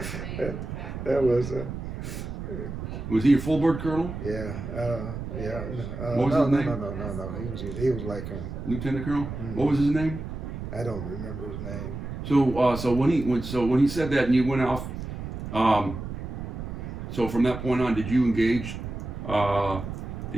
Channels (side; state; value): right; noise; rumble, 7 dB below the sound